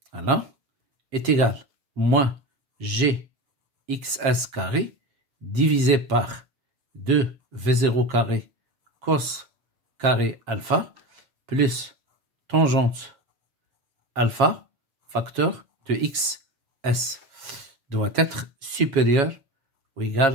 voilà, est égal à moins GXS carré divisé par 2V0 carré cos carré alpha plus tangente alpha facteur de XS doit être supérieur ou égal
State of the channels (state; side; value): late; left; 7.3 ms